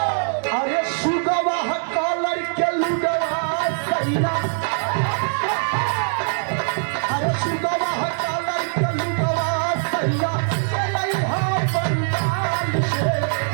अरे सुगवा कॉलर के लुगवा सैया अरे सुगवा कॉलर के लुगवा सैया लइहा पंडाल से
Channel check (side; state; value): left; silent; 61 dB below the other